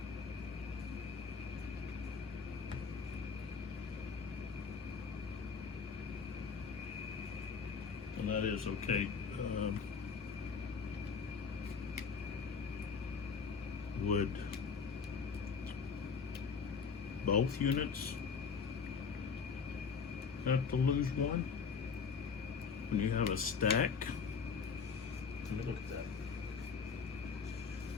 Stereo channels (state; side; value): quieter; right; 5.7 dB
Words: And that is okay. Would both units have to lose one when you have a stack? Let me look at that.